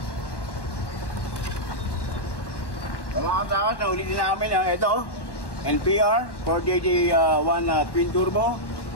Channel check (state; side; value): late; right; 1.1 ms